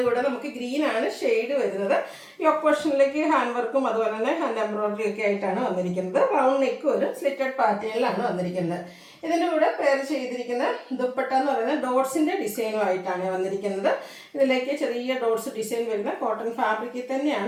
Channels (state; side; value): identical; both; correlation 1.00